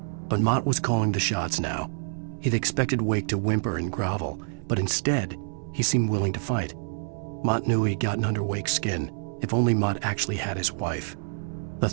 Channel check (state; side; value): silent; left; 60 dB below the other